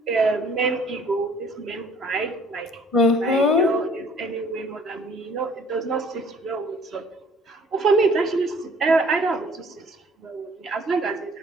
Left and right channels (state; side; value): normal; both; correlation 0.56